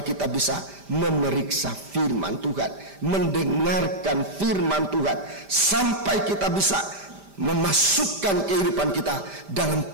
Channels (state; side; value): late; left; 5.0 ms